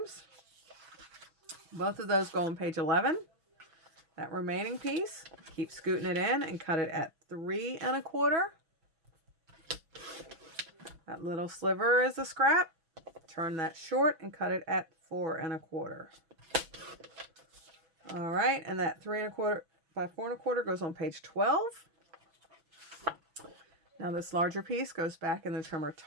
Both of those go on page 11. That remaining piece, keep scooting it in and cut it at 3 1/4. That little sliver is a scrap. Turn that short and cut it at 4 1/4. All right, and that 3 1/4 by 4 1/4 goes on page 12. Now this larger piece goes back in the trimmer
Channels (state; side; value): late; left; 6.1 ms